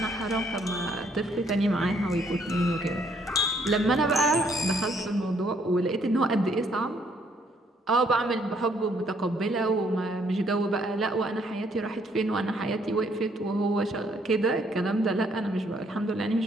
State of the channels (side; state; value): both; normal; correlation 0.68